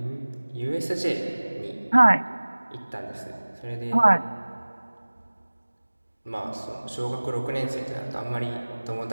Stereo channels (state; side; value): inverted; both; correlation -1.00